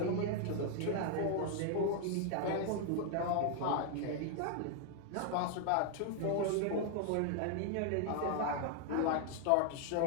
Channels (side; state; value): both; different; correlation 0.00